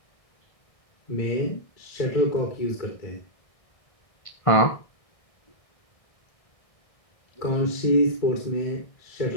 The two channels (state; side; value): late; right; 1.6 ms